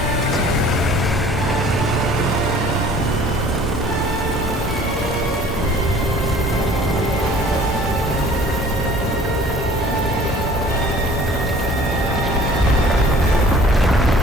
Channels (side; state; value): both; normal; correlation 0.51